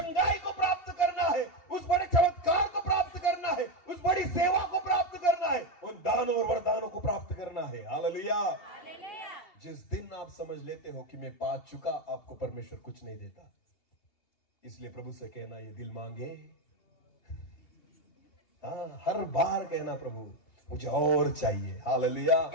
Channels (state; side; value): late; right; 2.8 ms